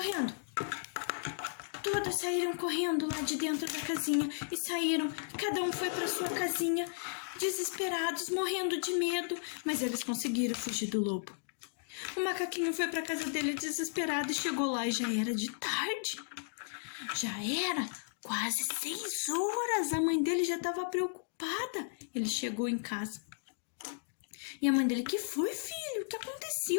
todas saíram correndo lá de dentro da casinha e saíram. Cada um foi para sua casinha, desesperados, morrendo de medo, mas eles conseguiram fugir do lobo. O macaquinho foi para casa dele desesperado e chegou lá e já era de tarde. Já era quase 6 horas. A mãe dele já estava preocupada. Ele chegou em casa. E a mãe dele: que foi, filho? O que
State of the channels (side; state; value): right; silent; digital silence